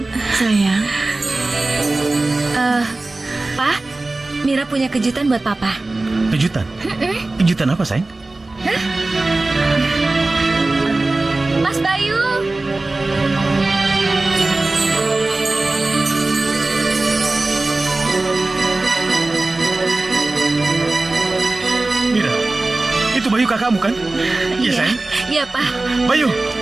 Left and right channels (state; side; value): quieter; left; 3.1 dB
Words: Sayang. Pak, Mira punya kejutan buat Papa. Kejutan? Kejutan apa, sayang? Mas Bayu. Mira, itu Bayu kakakmu kan? Iya, sayang. Iya, Pak. Bayu,